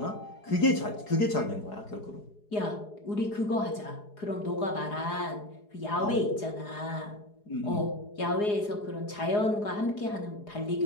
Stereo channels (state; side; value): late; right; 4.8 ms